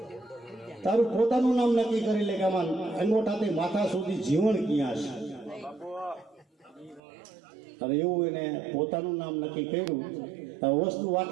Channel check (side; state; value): left; drops out; at 7.0 s